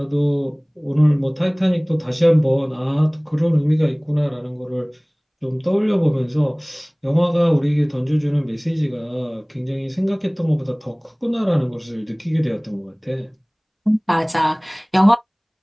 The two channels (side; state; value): both; identical; correlation 1.00